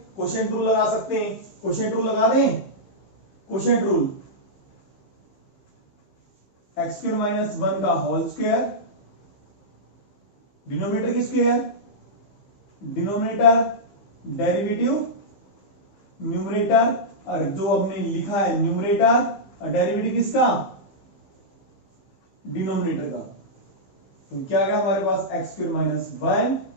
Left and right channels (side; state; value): right; late; 15 ms